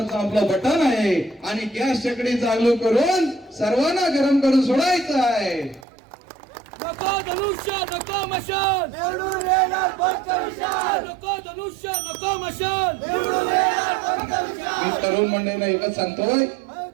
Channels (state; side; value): drops out; left; at 5.9 s